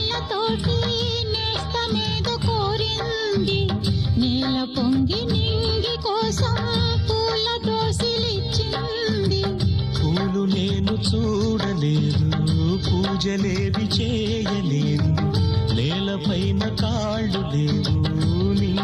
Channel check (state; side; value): identical; both; correlation 1.00